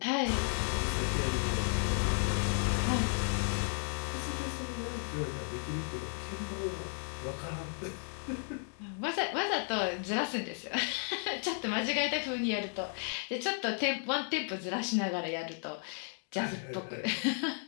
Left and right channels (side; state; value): right; silent; 55 dB below the other